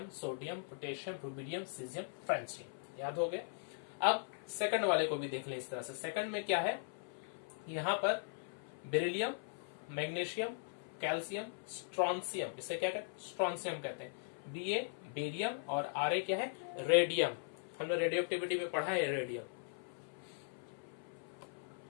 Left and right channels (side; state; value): right; silent; 51 dB below the other